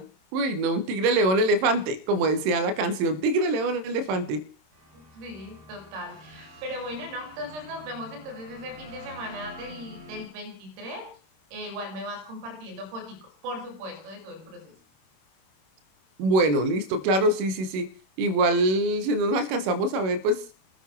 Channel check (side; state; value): left; late; 27 ms